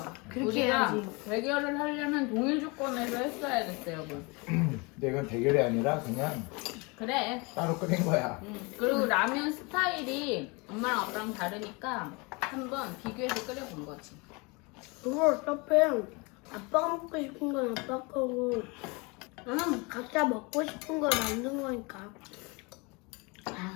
그렇게 우리가 해야지. 대결을 하려면 동일 조건에서 했어야겠어, 여러분. 근데 이건 대결이 아니라 그냥 그래. 따로 끓인 거야. 그리고 라면 스타일이 엄마랑 아빠랑 다르니까 한번 비교해서 끓여본 거지. 그거 어차피 아빠가 먹고 싶은 건 아빠 거고 각자 먹고 싶은 걸 만든 거니까.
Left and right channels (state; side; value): quieter; right; 28.2 dB